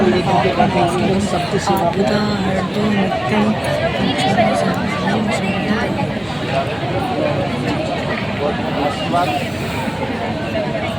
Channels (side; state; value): left; noise; hum, 27 dB below the sound